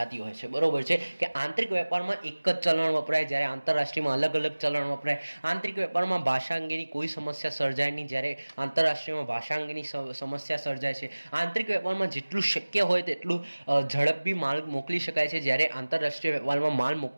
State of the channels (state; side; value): inverted; both; correlation -1.00